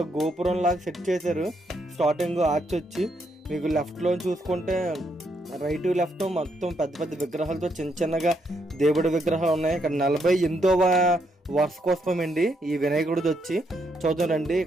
గోపురం లాగా సెట్ చేశారు. స్టార్టింగ్ ఆర్చ్ వచ్చి మీకు లెఫ్ట్ లో చూసుకుంటే రైట్ లెఫ్ట్ మొత్తం పెద్ద పెద్ద విగ్రహాలతో చిన్న చిన్నగా దేవుడి విగ్రహాలు ఉన్నాయి. ఇక్కడ 48వ వార్షికోత్సవం అండి ఈ వినాయకుడిది వచ్చి. చూద్దాం రండి.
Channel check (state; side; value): normal; both; correlation 0.76